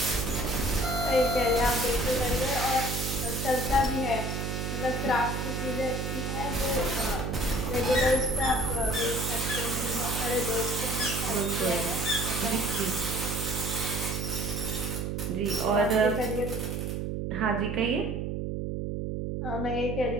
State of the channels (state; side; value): noise; right; hum, 2 dB below the sound